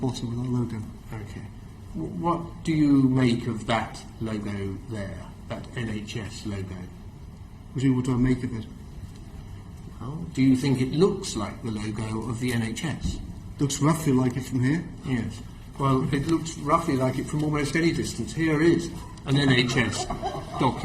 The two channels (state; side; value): identical; both; correlation 1.00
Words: with our logo. Okay. What do you make of that logo there, that NHS logo? What do I make of it? Well, do you think it looks like the logo of the NHS? Looks roughly like it from here. Yes. Well, it looks roughly like it from almost any distance. Here is an NHS